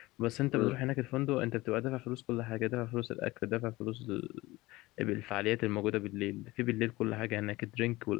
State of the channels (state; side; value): quieter; right; 19.9 dB